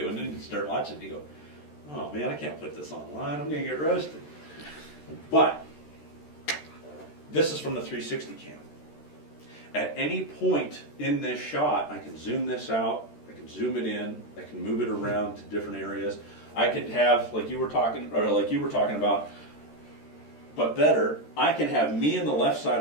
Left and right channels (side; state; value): right; late; 13 ms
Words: and you start watching, you go, oh man, I can't put this online, I'm gonna get roasted. But this is from the 360 cam. At any point in this shot, I can zoom this out, I can zoom it in, I can move it around to different areas. I could have, like you were talking about, but better, I can have me in the left side